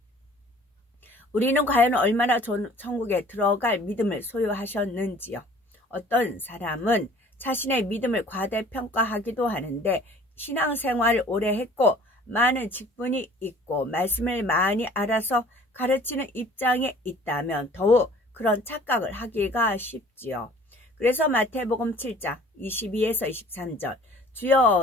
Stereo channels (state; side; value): normal; both; correlation 0.50